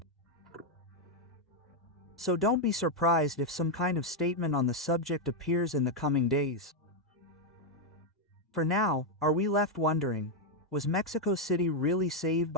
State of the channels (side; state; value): both; normal; correlation 0.01